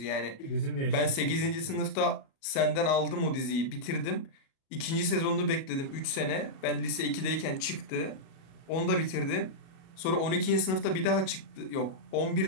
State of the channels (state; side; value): late; right; 37 ms